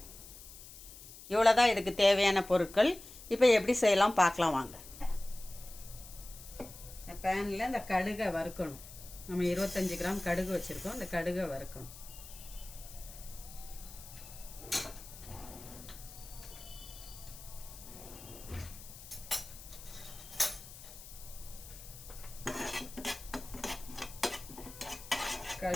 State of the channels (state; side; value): noise; left; hiss, 16 dB below the sound